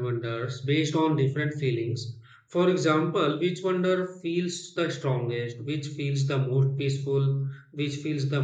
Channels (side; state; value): both; identical; correlation 1.00